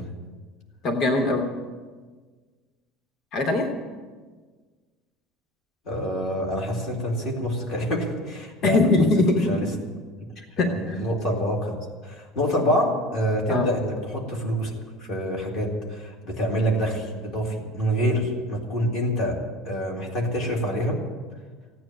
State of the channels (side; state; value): both; normal; correlation 0.38